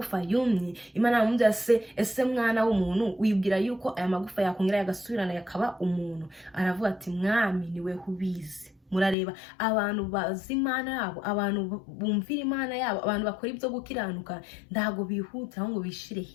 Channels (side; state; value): right; drops out; at 9.2 s